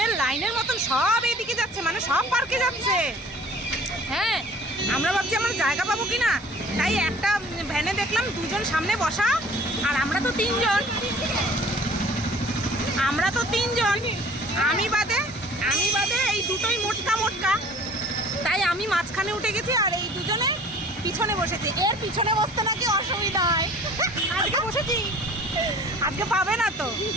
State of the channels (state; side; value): normal; both; correlation 0.49